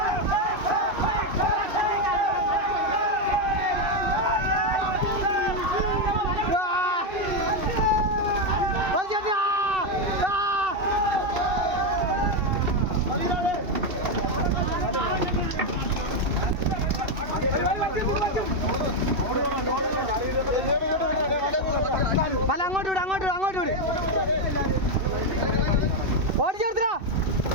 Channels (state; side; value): late; left; 2.7 ms